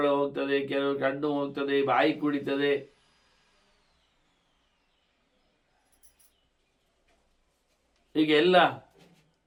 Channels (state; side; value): identical; both; correlation 1.00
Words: ಹೋಗ್ತದೆ, ಕೆಲವು ಕಣ್ಣು ಹೋಗ್ತದೆ, ಬಾಯಿ ಕುಡಿತದೆ. ಹೀಗೆ ಎಲ್ಲ